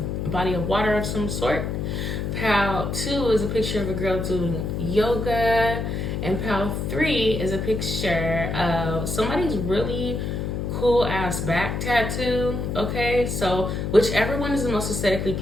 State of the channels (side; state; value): left; noise; hum, 2 dB below the sound